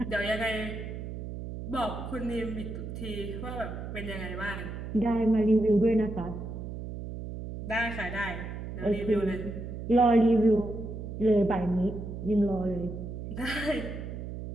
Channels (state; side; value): noise; right; hum, 8 dB below the sound